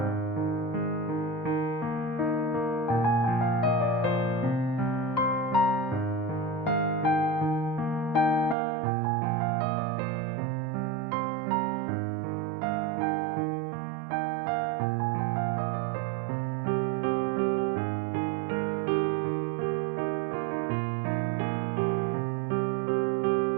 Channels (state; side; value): drops out; left; at 8.6 s